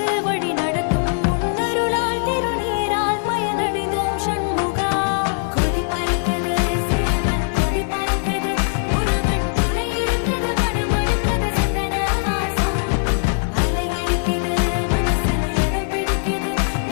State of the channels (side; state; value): right; silent; 65 dB below the other